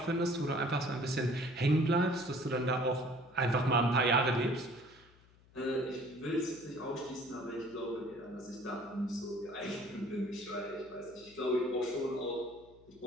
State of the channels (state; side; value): noise; left; hum, 27 dB below the sound